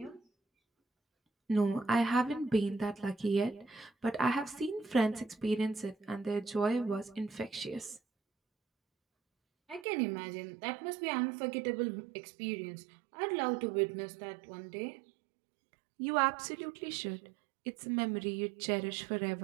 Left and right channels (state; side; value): drops out; left; at 9.9 s